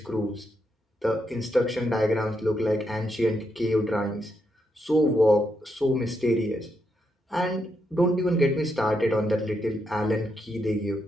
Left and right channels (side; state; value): both; normal; correlation 0.81